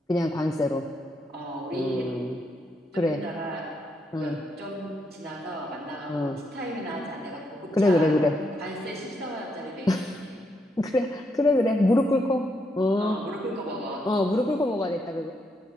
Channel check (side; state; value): both; normal; correlation 0.78